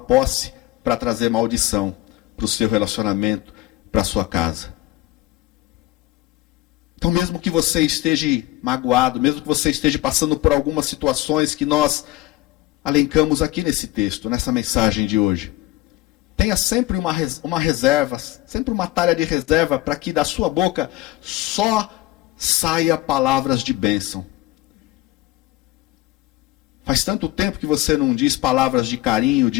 para trazer maldição para o seu relacionamento, para a sua casa. Então, mesmo que você esteja magoado, mesmo que você esteja passando por algumas situações que nós alencamos aqui nesse texto, nessa mensagem de hoje, tenha sempre uma reserva, sempre uma talha de reserva, para que da sua boca só saia palavras de bênção. Faz tanto tempo que você não diz palavras de carinho,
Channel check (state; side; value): quieter; right; 17.6 dB